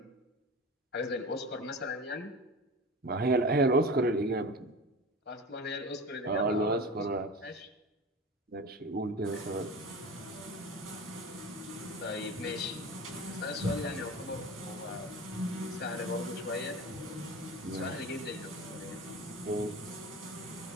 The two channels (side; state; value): both; normal; correlation 0.32